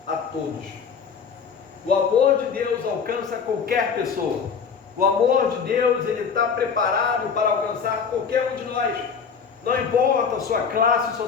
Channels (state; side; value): quieter; right; 6.2 dB